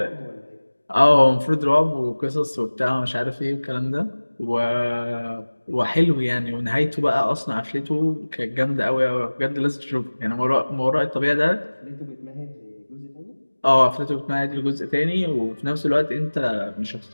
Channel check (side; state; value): both; inverted; correlation -1.00